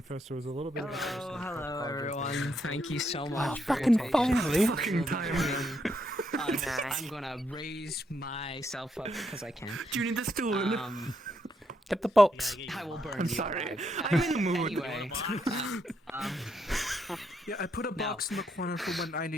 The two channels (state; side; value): normal; both; correlation 0.77